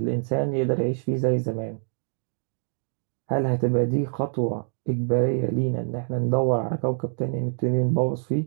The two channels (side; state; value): left; silent; digital silence